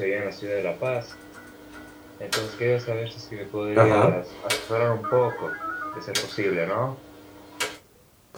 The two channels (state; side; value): identical; both; correlation 1.00